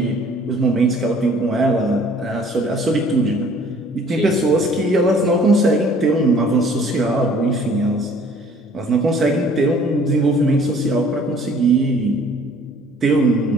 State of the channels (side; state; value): both; normal; correlation 0.55